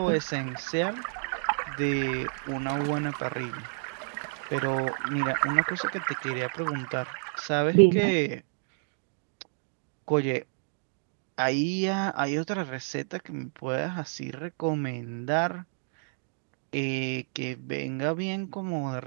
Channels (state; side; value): silent; left; digital silence